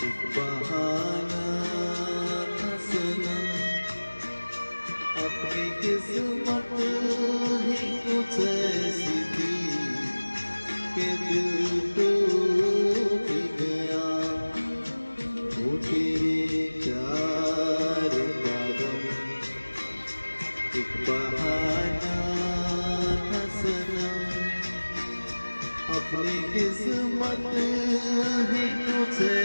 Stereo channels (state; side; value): inverted; both; correlation -1.00